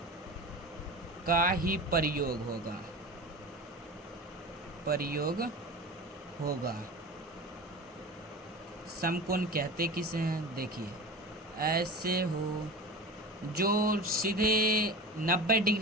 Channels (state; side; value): normal; both; correlation 0.32